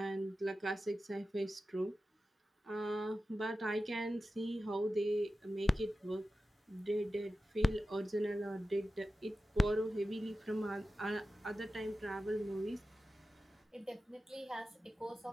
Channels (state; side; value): normal; both; correlation 0.93